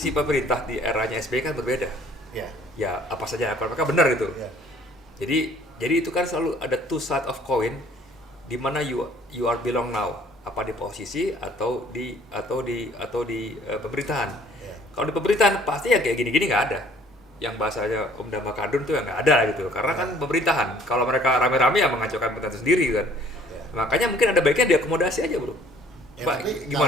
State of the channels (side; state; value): both; normal; correlation 0.57